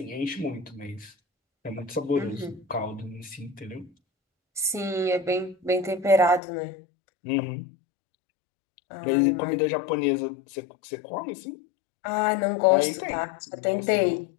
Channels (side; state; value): right; drops out; at 6.4 s